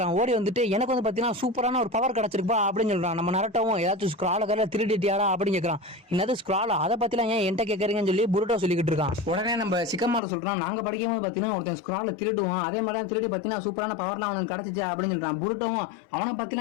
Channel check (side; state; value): right; drops out; at 10.2 s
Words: ஓடி வந்துட்டு எனக்கு வந்து பாத்தீங்கன்னா சூப்பரான ஒரு பவர் கிடைச்சிருப்பா அப்படின்னு சொல்றான். நம்ம நரட்டோவும் ஏதாச்சும் ஸ்க்ரால கரையில திருடிட்டியாடா அப்படின்னு கேட்கறான். என்னது ஸ்க்ராலா, அதை பத்திலாம் ஏன் என்கிட்ட கேட்கறீங்கன்னு சொல்லி புருட்டோ சொல்லிக்கிட்டு இருக்கான். உடனே நம்ம சிக்கமாரு சொல்றான், நாங்க படிக்கும்போது பாத்தீங்கன்னா ஒருத்தன் ஸ்க்ரால திருடுவான், அதே மாதிரி தான் திருடி பாத்தீங்கன்னா சூப்பரான பவர்லாம் அவனுக்கு கிடைச்சிச்சு அப்படின்னு சொல்றான். புருட்டோவும் அவனை